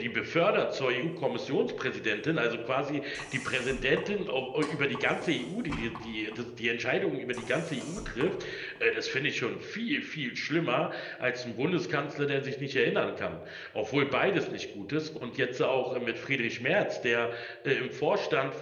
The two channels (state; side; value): identical; both; correlation 1.00